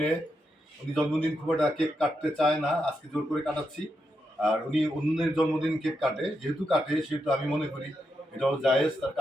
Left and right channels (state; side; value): normal; both; correlation 0.84